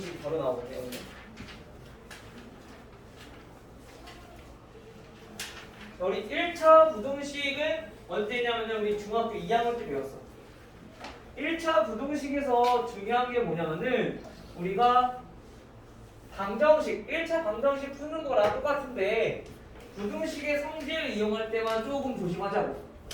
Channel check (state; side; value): identical; both; correlation 1.00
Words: 바로 나오거든요. 오늘. 자, 우리 1차 부등식은 언제냐면 우리 중학교 2학년 때 배웠어. 1차 부등식에서 중요한 게 뭐냐면은 우리가 방정식, 1차 방정식 푸는 거랑 똑같은데 부등식의 성질을 이용할 때만 조금 조심하자고.